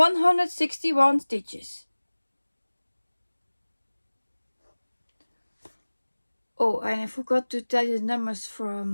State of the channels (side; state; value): both; inverted; correlation -1.00